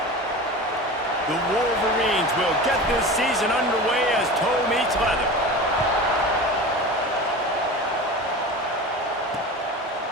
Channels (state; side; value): normal; both; correlation 0.32